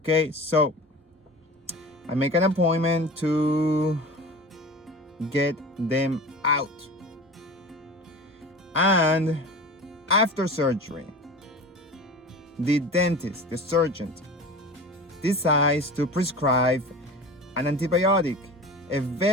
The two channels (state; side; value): normal; both; correlation 0.35